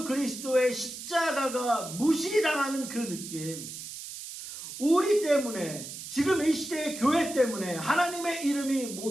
그리스도의 십자가가 무시당하는 그 느낌, 우리 때문에, 지금 이 시대의 교회 때문에 하나님의 이름이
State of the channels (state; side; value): noise; right; hiss, 10 dB below the sound